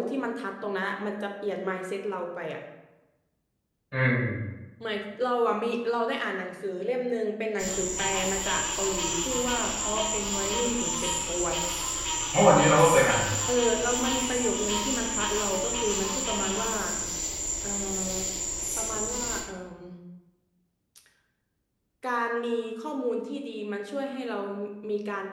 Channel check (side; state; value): both; identical; correlation 1.00